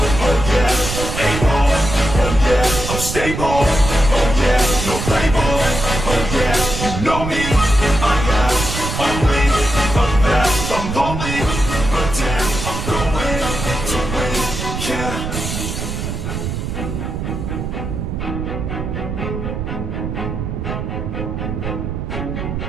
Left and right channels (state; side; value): noise; right; rumble, 4 dB below the sound